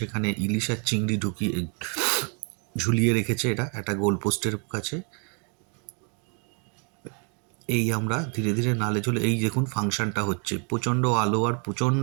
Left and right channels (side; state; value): left; quieter; 37.2 dB